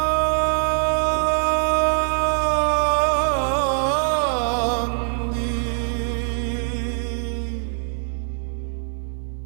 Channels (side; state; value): left; silent; 56 dB below the other